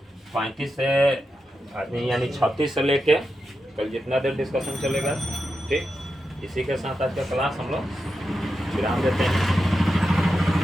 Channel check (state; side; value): normal; both; correlation 0.88